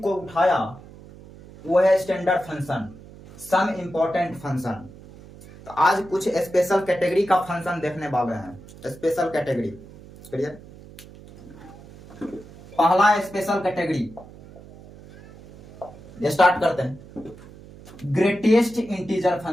को उठाया वो है standard function, some important function. तो आज कुछ स्पेशल कैटेगरी का फंक्शन देखने वाले हैं। Special category, clear? पहला स्पेशल कैटेगरी स्टार्ट करते हैं। Greatest integer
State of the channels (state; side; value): noise; right; hum, 19 dB below the sound